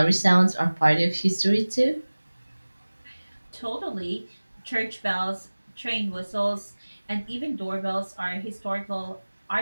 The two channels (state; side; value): inverted; both; correlation -1.00